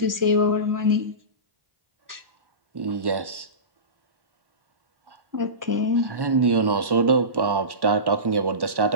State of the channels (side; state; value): left; late; 1.1 ms